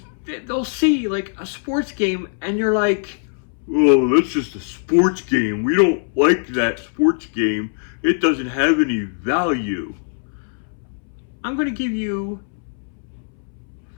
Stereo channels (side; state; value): right; silent; 65 dB below the other